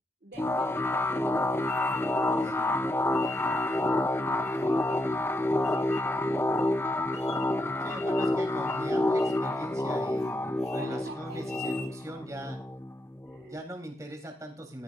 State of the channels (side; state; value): both; normal; correlation 0.81